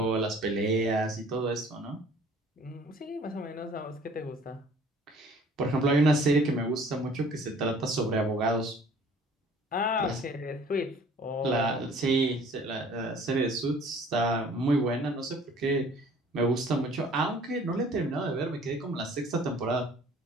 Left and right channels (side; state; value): both; normal; correlation 0.53